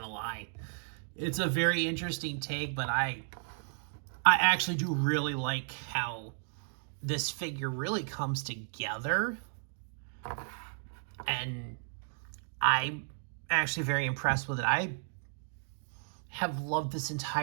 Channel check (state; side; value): silent; left; digital silence